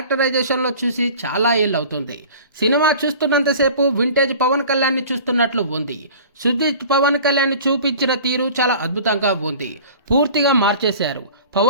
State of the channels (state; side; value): inverted; both; correlation -0.43